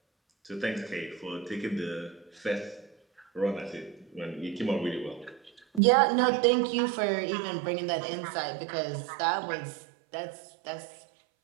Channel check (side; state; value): left; drops out; at 5.8 s